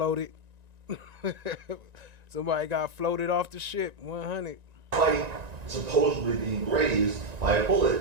Somebody got floated off the ship, 100. Despite supposedly being grazed by a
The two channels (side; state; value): left; late; 1.9 ms